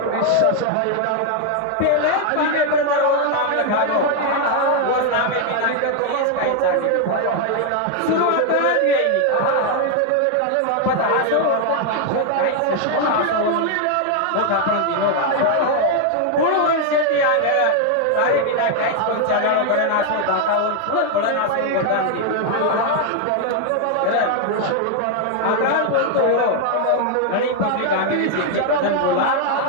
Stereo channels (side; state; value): both; different; correlation 0.00